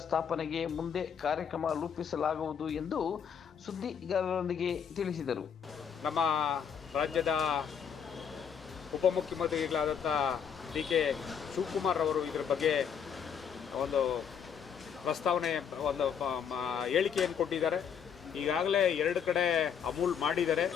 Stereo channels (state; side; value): quieter; right; 7.5 dB